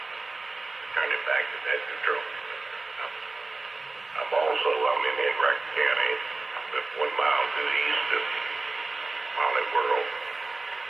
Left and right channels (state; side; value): quieter; left; 3.4 dB